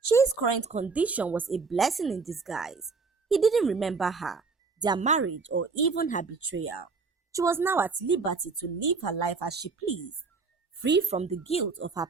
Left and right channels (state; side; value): quieter; left; 4.6 dB